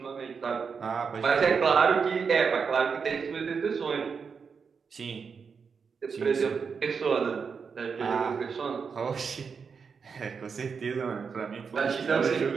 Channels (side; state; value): left; quieter; 5.8 dB